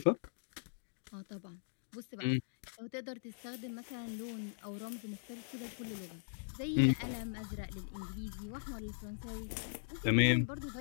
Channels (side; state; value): right; silent; digital silence